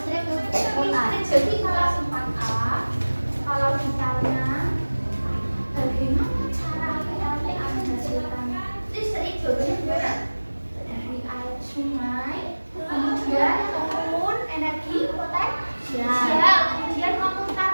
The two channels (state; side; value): inverted; both; correlation -1.00